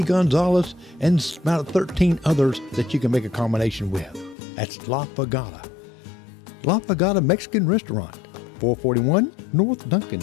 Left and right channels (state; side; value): drops out; right; at 4.4 s